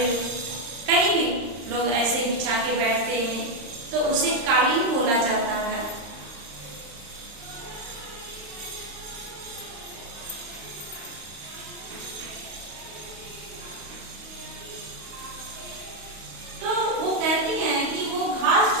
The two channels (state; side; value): late; left; 35 ms